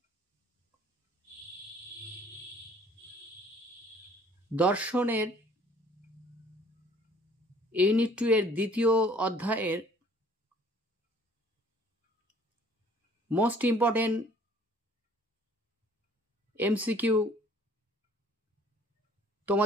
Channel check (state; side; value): normal; both; correlation 0.56